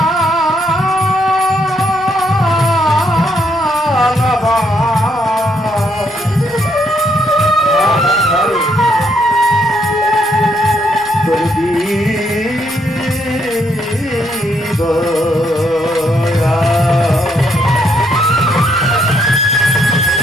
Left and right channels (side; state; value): left; noise; rumble, 28 dB below the sound